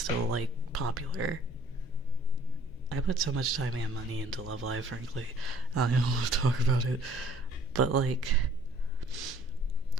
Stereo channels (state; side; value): noise; left; hum, 22 dB below the sound